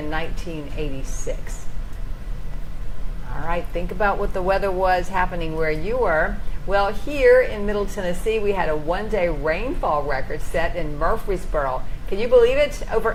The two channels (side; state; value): both; identical; correlation 1.00